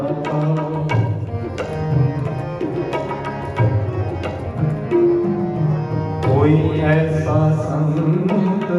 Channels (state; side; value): identical; both; correlation 1.00